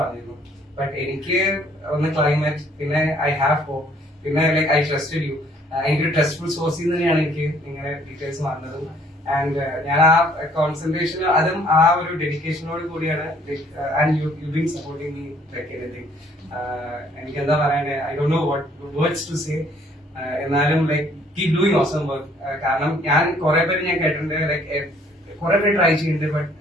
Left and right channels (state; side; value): normal; both; correlation 0.61